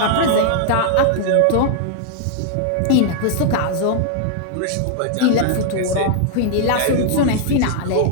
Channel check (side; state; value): both; different; correlation -0.01